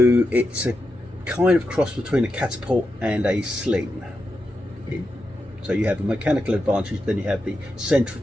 it's a kind of cross between a catapult and a sling. So you have a mechanical advantage, then you have the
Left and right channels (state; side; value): normal; both; correlation 0.87